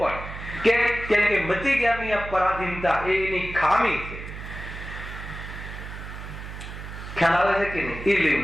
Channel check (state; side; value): noise; right; hum, 10 dB below the sound